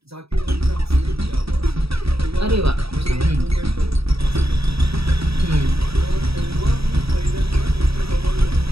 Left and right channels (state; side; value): late; left; 0.77 ms